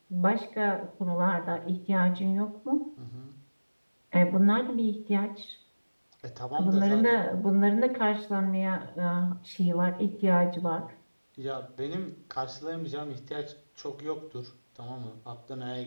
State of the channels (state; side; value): inverted; both; correlation -1.00